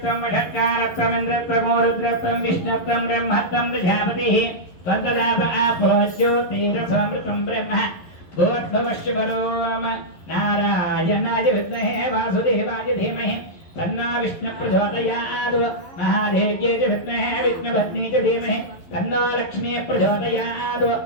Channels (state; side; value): late; right; 11 ms